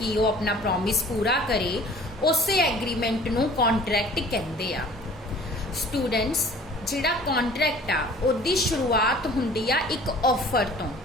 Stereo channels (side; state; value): both; normal; correlation 0.49